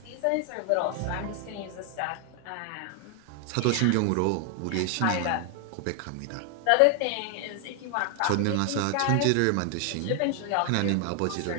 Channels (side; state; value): both; different; correlation 0.00